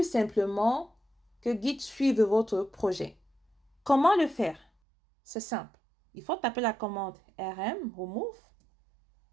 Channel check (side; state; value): left; drops out; at 4.7 s